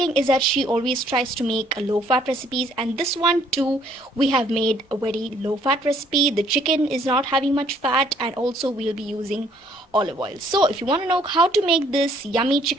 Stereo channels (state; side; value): normal; both; correlation 0.63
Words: is that she always tries to make low fat recipes, and this one too we have made a very low fat recipe. The chicken is not having much fat, and also we'll be using olive oil. So if you want to know how to make this yummy